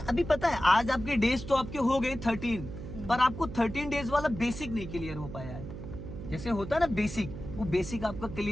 पता है आज आपके डेज तो आपके हो गए 13, पर आपको 13 डेज वाला बेसिक नहीं क्लियर हो पाया है। जैसे होता है ना बेसिक, वो बेसिक आपका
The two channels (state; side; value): noise; right; hum, 10 dB below the sound